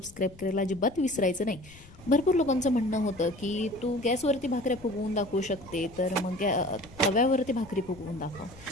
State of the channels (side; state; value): left; noise; rumble, 21 dB below the sound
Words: करायला अजिबात विसरायचं नाही. भरपूर लोकांचं म्हणणं होतं की तू गॅसवरती भाकऱ्या फुगवून दाखवू शकते, तर मग तव्यावरती भाकरी फुगवून दाखव.